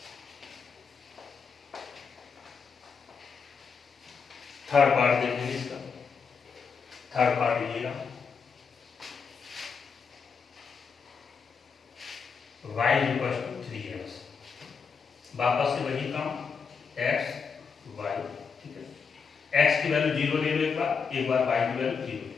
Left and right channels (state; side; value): quieter; right; 5.8 dB